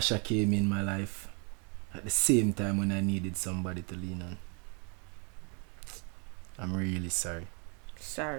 came in my life at the same time when I needed somebody to lean on. I'm really sorry.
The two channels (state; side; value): quieter; left; 35.8 dB